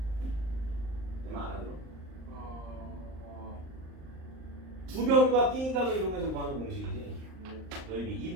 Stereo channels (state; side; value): late; left; 38 ms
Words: 내 말 알아들어? 두 변과 띵각을 이용해서 구하는 공식이지. 넓이